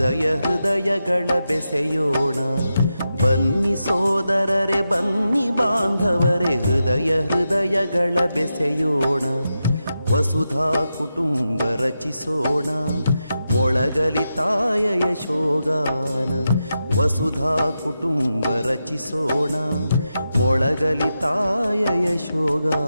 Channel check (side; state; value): both; inverted; correlation -0.88